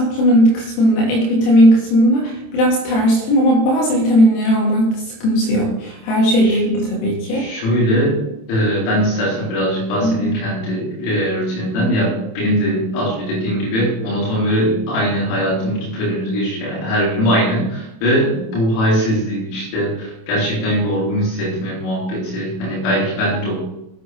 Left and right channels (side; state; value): right; late; 27 ms